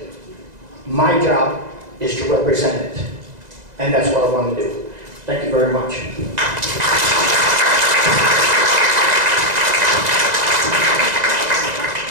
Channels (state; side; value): late; left; 2.0 ms